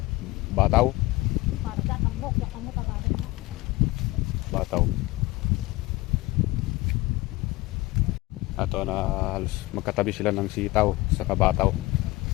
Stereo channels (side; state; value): right; quieter; 20.2 dB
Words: Bataw. Bataw. Ato na halos magkatabi sila ng sitaw sa kabataw.